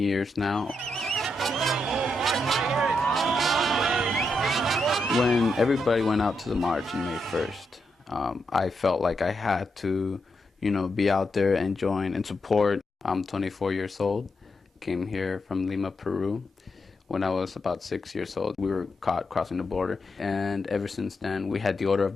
now. When everybody went out to the march on May 1st, I felt like I had to, be out there and join and support. I'm 24 years old. Came here from Lima, Peru. When I was about 6 years old, we were caught crossing the border. And ever since then, we had the order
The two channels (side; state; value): both; normal; correlation 0.83